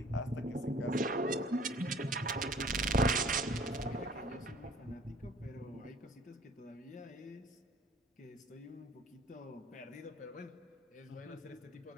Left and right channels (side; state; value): both; normal; correlation 0.53